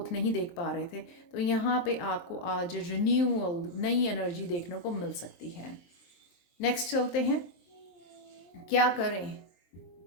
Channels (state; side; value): late; right; 23 ms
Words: नहीं देख पा रहे थे, तो यहाँ पे आपको आज रिन्यूअल, नई एनर्जी देखने को मिल सकती है। नेक्स्ट चलते हैं, क्या करें,